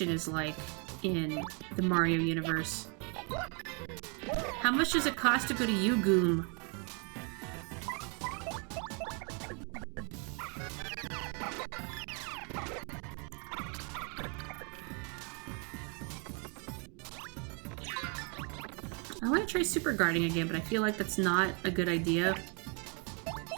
is like in the Mario universe? How much does it cost to go to Goom? I want to try super guarding again, but I feel like that's not a good idea.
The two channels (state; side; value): quieter; left; 35.1 dB